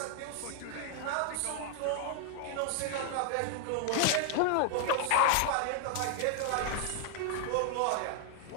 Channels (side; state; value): both; different; correlation 0.00